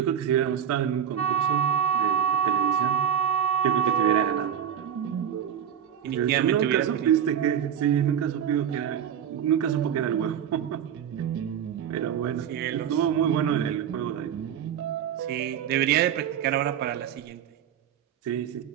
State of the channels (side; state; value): left; quieter; 9.0 dB